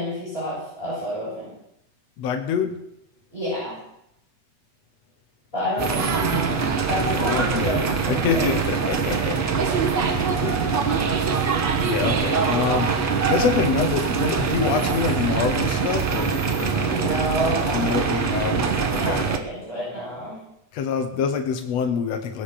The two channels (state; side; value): late; right; 8.3 ms